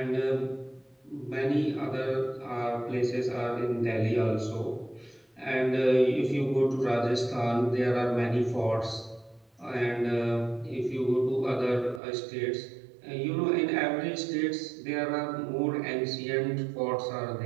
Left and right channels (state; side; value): drops out; left; at 12.0 s